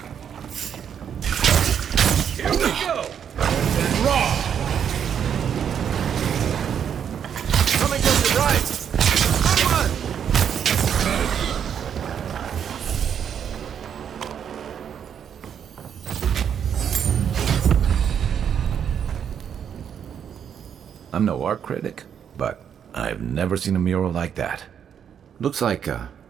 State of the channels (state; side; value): quieter; left; 8.3 dB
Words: Here we go! Raw! Coming to the right! Come on! I'm no art critic, but I've never seen a mural like that. Looks like an